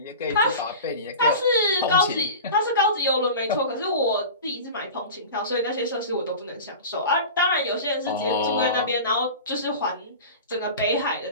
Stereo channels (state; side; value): inverted; both; correlation -0.33